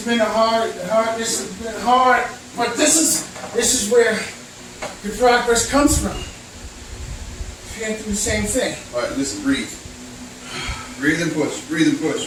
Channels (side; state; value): both; identical; correlation 1.00